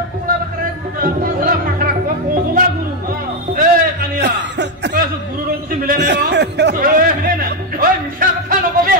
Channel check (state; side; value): normal; both; correlation 0.05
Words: পাখরা ওলা পাখরা ওলা গুরু কানিয়া কইছো গুরু রং কিছু মিলে নাই মিলে না ওই মিছা কথা নকবি